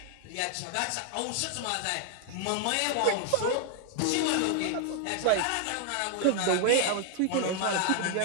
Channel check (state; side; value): different; both; correlation 0.00